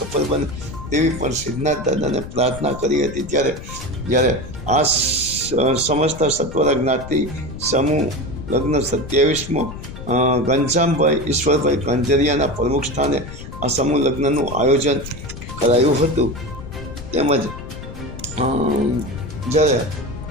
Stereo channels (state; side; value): noise; left; rumble, 12 dB below the sound